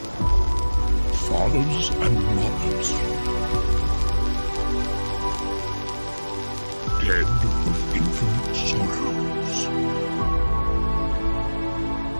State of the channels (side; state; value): both; inverted; correlation -1.00